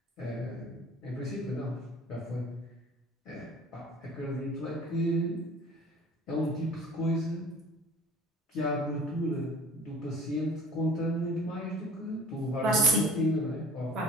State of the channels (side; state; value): both; normal; correlation 0.47